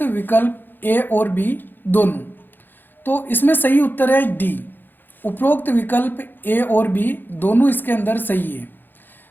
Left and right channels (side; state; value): right; late; 0.093 ms